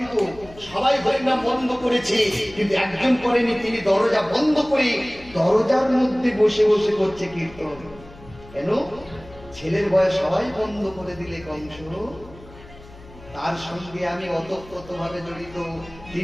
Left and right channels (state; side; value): noise; left; hum, 20 dB below the sound